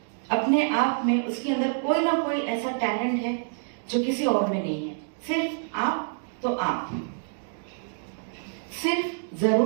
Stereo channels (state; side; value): silent; left; digital silence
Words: अपने आप में उसके अंदर कोई ना कोई ऐसा टैलेंट है जो किसी और में नहीं है। सिर्फ आप तो आप, सिर्फ